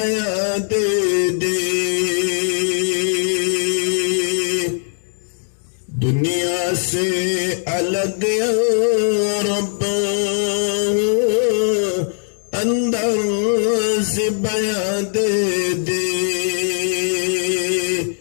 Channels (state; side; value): silent; right; 62 dB below the other